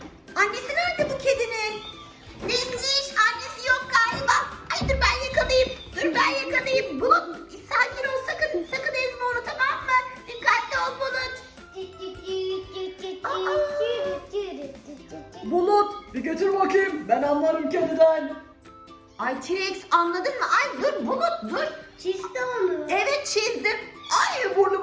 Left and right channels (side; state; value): both; identical; correlation 1.00